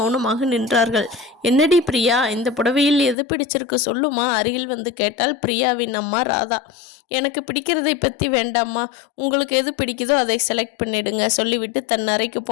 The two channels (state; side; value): drops out; right; at 3.2 s